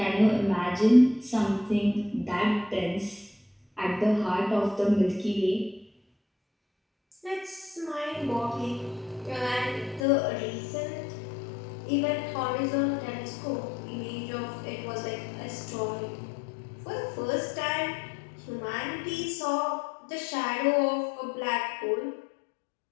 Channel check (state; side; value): drops out; right; at 10.1 s